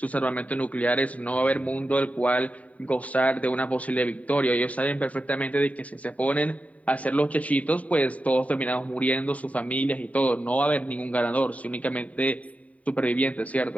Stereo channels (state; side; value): late; right; 0.069 ms